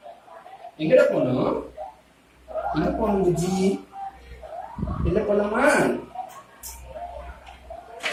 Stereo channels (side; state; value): both; identical; correlation 1.00